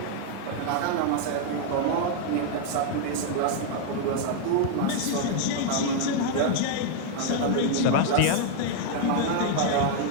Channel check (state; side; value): different; both; correlation 0.00